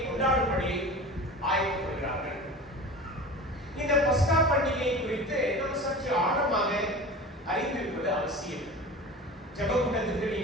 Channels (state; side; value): normal; both; correlation 0.35